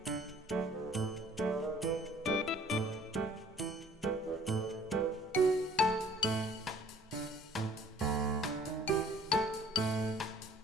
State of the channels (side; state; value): both; normal; correlation 0.55